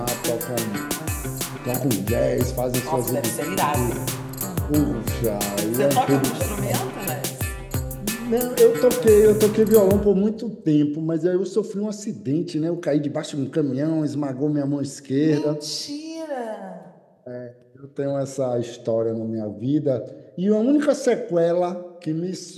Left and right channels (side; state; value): both; identical; correlation 1.00